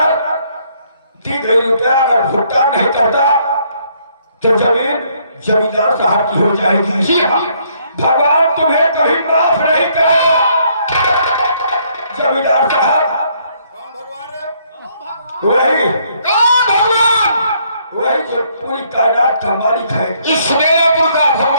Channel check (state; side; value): inverted; both; correlation -0.68